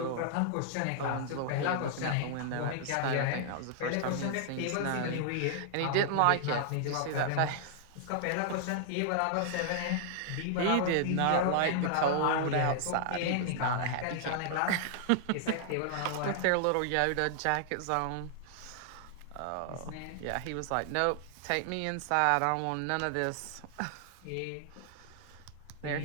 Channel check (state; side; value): different; both; correlation -0.01